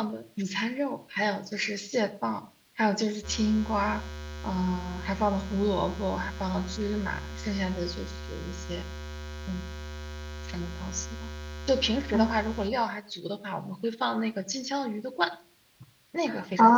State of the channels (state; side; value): identical; both; correlation 1.00